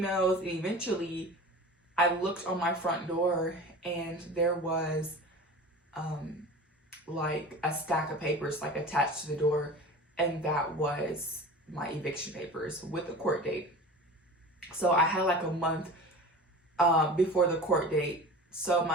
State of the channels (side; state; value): both; normal; correlation 0.36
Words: and eventually I looked on my front door and there was like a stack of papers like attached to the door, and that was my eviction papers with the court date. So I had like a month before the court date. So